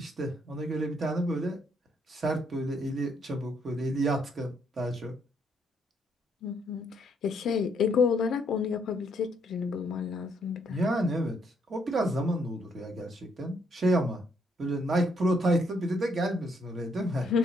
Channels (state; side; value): normal; both; correlation 0.71